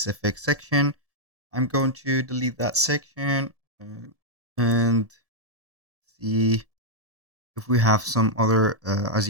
section. I'm going to delete that section and see if we have some other, as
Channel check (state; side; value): late; left; 1.7 ms